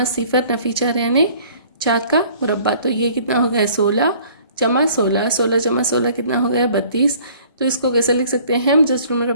0 नफ़ी 4 यानी 4 का मुरब्बा। तो ये कितना हो गया 16 जमा 16, 16 जमा 16 कितना हो गया 32। तो इसको कैसे लिख सकते हैं हम जसर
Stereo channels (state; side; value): inverted; both; correlation -0.54